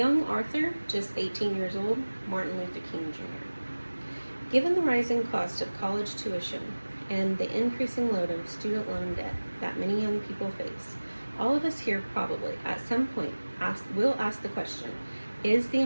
author, just 18 years old, Martin Luther King Jr. Given the rising cost of college tuition and the increasing load of student loan debt that many young people face, all of us here probably, at some point, will ask the question, is the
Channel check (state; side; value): inverted; both; correlation -1.00